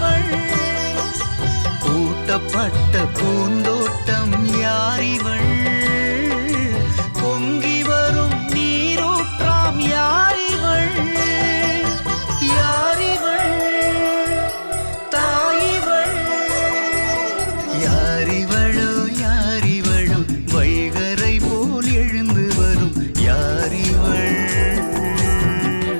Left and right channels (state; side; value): inverted; both; correlation -1.00